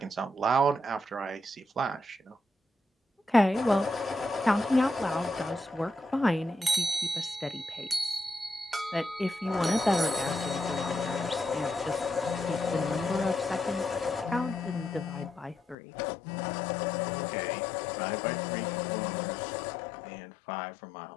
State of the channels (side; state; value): right; drops out; at 15.8 s